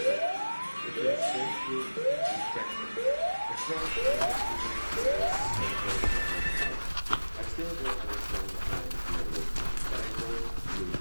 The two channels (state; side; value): inverted; both; correlation -1.00